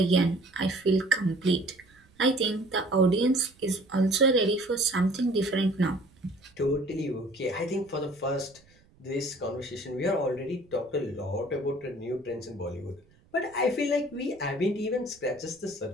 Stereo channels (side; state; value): right; noise; rumble, 30 dB below the sound